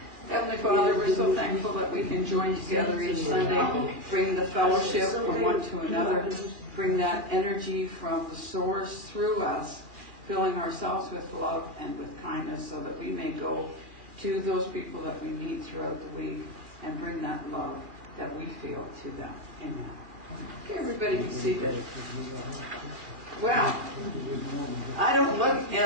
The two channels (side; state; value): left; late; 2.4 ms